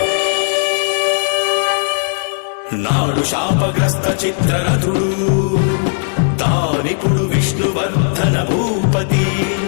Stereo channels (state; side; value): silent; right; digital silence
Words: నాడు శాపగ్రస్త చిత్రరథుడు తానిపుడు విష్ణువర్ధన భూపతి